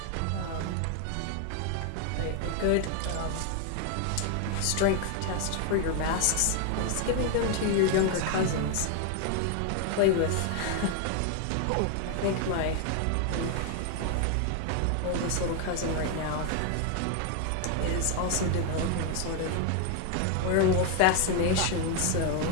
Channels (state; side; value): different; both; correlation 0.01